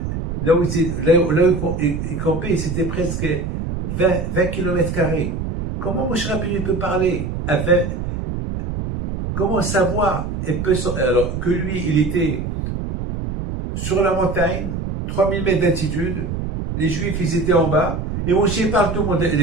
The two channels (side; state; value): right; noise; rumble, 4 dB below the sound